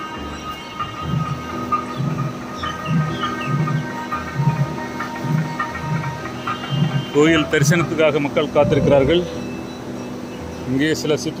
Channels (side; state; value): both; identical; correlation 1.00